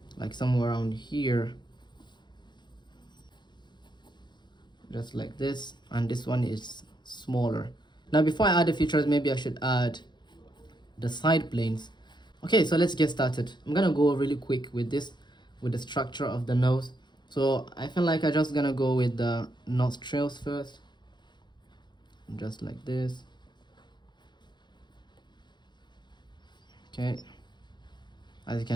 like somewhere around here, just like this. And this one is smaller. Now before I add the features, maybe I should add the side planes. Okay, so let's get started. I'm gonna go really quick with this, with the structure of the nose. So I feel like I'm just gonna go with the nostrils first, just like this. Okay, as you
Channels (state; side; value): late; right; 0.21 ms